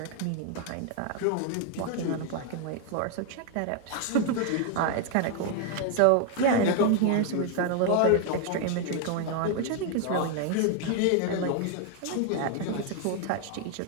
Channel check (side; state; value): both; different; correlation 0.00